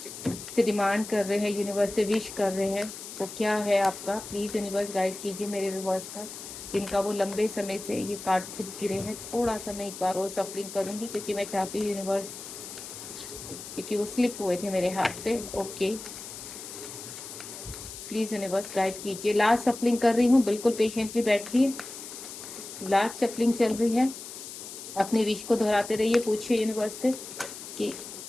से डिमांड कर रहे हैं, यूनिवर्स से विश कर रहे हैं, वो क्या है आपका? प्लीज़ यूनिवर्स गाइड कीजिए मेरे व्यूवर्स का, जिनका वो लंबे समय से ये कार्ड खुद गिरे हैं। थोड़ा सा मैं एक बार और सफलिंग करूँगी क्योंकि मैं चाहती हूँ यूनिवर्स, क्योंकि वो स्लिप हुए थे मेरे हाथ से। ओके, प्लीज़ यूनिवर्स गाइड कीजिए। लास्ट सफलिंग कर रही हूँ, बिल्कुल पेशेंटली बैठिए। लास्ट सफलिंग चल रही है। अपनी विश को दोहराते रहिए, पूछिए यूनिवर्स से कि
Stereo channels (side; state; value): left; noise; hiss, 11 dB below the sound